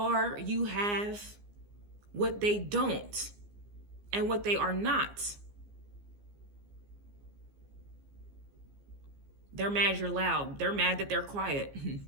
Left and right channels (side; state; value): left; late; 15 ms